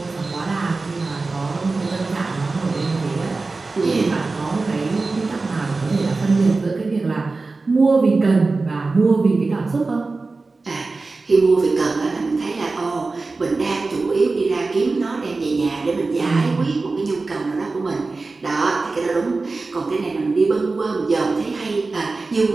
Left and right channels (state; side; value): quieter; left; 3.7 dB